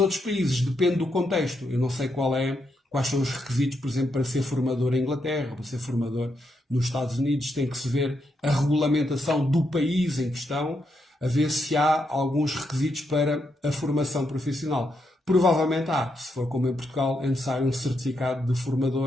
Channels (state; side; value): normal; both; correlation 0.81